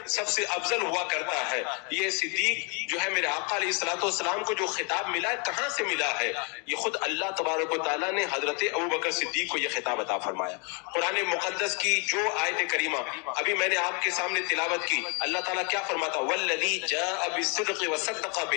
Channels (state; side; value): quieter; right; 34.4 dB